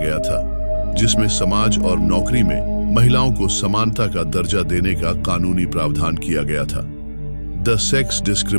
था, जिसमें समाज और नौकरी में महिलाओं को समानता का दर्जा देने का कानूनी प्रावधान किया गया था। The sex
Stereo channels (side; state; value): both; inverted; correlation -1.00